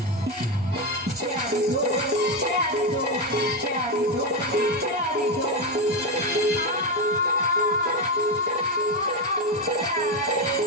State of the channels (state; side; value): normal; both; correlation 0.09